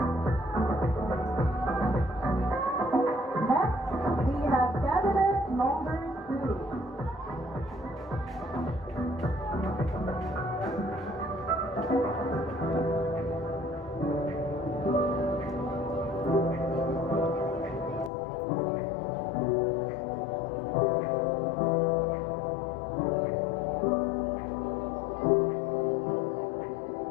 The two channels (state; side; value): drops out; right; at 18.1 s